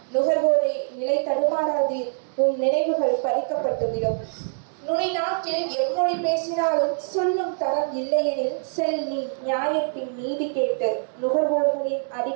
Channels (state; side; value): silent; left; digital silence